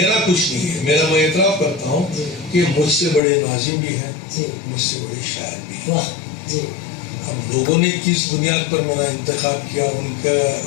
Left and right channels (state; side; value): drops out; right; at 3.2 s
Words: کچھ نہیں ہے. میں اعتراف کرتا ہوں کہ مجھ سے بڑے ناظم بھی ہیں, مجھ سے بڑے شاعر بھی ہیں. اب لوگوں نے کس بنیاد پر میرا انتخاب کیا,